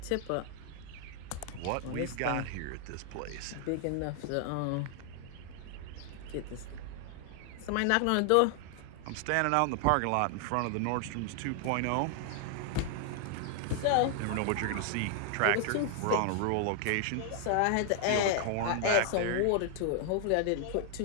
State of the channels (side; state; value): both; different; correlation 0.00